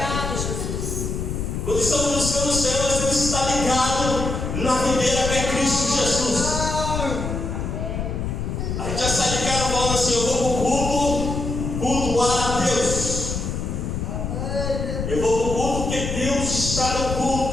Jesus. Quando estamos buscando o Senhor, nós temos que estar ligado na videira que é Cristo Jesus. A gente já sai de casa falando assim: eu vou para o culto, cultuar a Deus. Eu vou para o culto porque Deus está no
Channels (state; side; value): noise; left; rumble, 3 dB below the sound